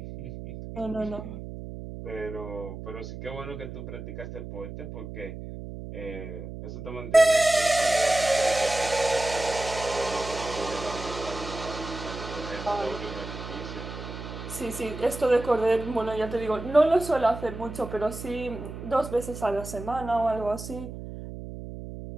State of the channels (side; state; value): right; noise; hum, 10 dB below the sound